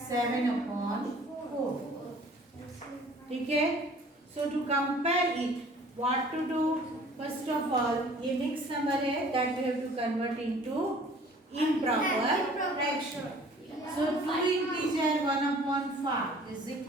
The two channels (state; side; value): normal; both; correlation 0.51